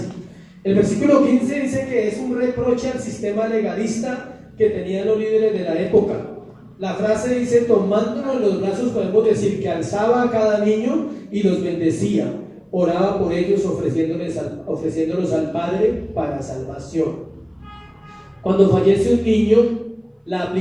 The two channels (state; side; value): identical; both; correlation 1.00